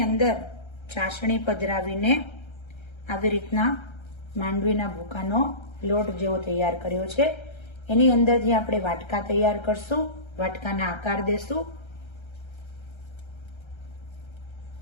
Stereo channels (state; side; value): late; right; 1.3 ms